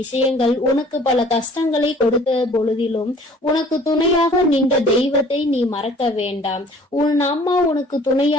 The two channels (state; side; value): normal; both; correlation 0.52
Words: விஷயங்கள் உனக்கு பல கஷ்டங்களை கொடுத்த பொழுதிலும் உனக்கு துணையாக நின்ற தெய்வத்தை நீ மறக்க வேண்டாம். உன் அம்மா உனக்கு